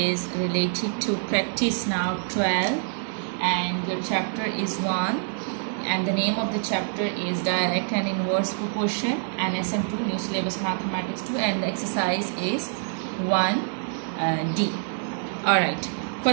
related to practice now 12 and your chapter is 1 and the name of the chapter is direct and inverse proportion and SM2 new syllabus mathematics 2 and the exercise is 1D. Alright,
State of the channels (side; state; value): left; silent; digital silence